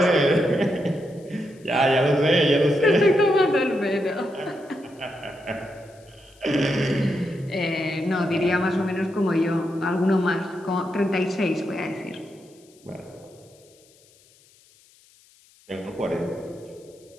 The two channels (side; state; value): left; noise; hiss, 29 dB below the sound